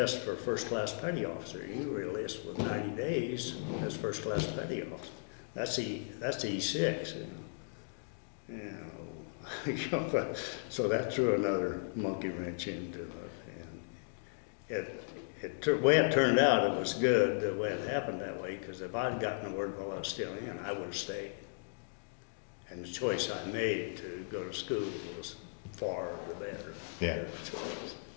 for first-class petty officer. You were enlisted with 90 days as first-class petty officer. That's E6. So that threw another monkey wrench into it. And the way it turned out, it was good the way it happened that way, because if I'd gotten the word while I was still in, I would have stayed. And the choice I made to go to school was far the better. Yeah. Choice.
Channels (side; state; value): right; silent; digital silence